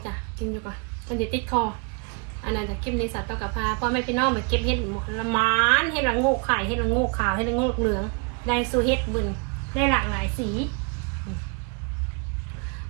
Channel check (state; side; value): quieter; left; 34.1 dB